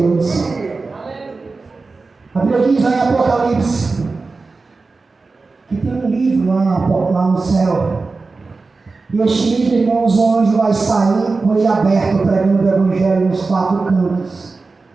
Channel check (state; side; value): quieter; left; 3.9 dB